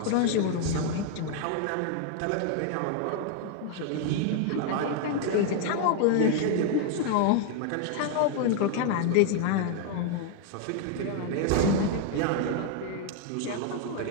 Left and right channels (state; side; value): different; both; correlation 0.00